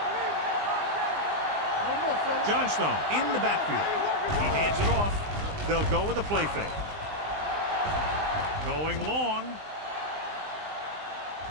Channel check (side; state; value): left; late; 20 ms